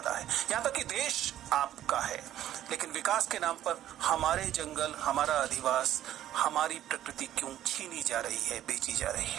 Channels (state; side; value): quieter; left; 12.2 dB